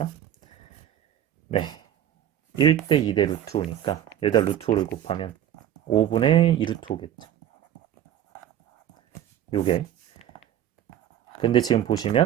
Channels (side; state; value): left; quieter; 10.9 dB